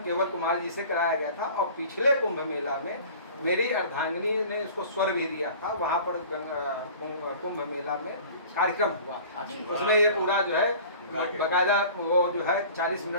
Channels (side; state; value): both; inverted; correlation -0.44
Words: केवल कुमार जी से कराया गया था, और पिछले कुंभ मेला में मेरी अर्धांगिनी ने इसको स्वर भी दिया था, वहाँ पर कुंभ मेला में कार्यक्रम हुआ था। उसमें ये पूरा जो है बकायदा वो जो है 40